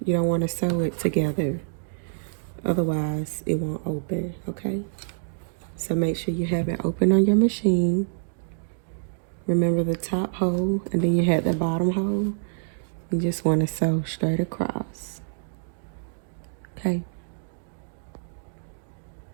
You don't want to sew it together, otherwise it won't open, okay? So make sure you have it open on your machine. Remember the top hole, and then you have the bottom hole. You just want to sew straight across, okay?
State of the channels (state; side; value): silent; left; digital silence